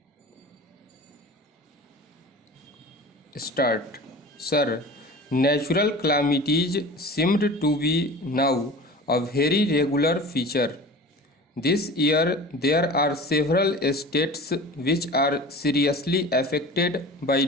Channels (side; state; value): both; normal; correlation 0.38